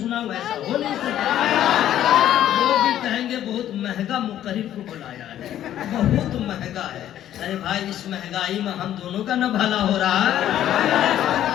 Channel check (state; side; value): quieter; right; 11.7 dB